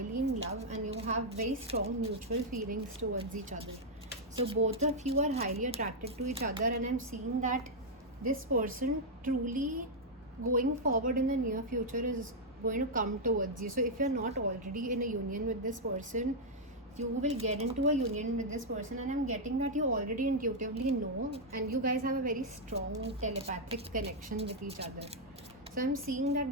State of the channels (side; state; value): both; normal; correlation -0.03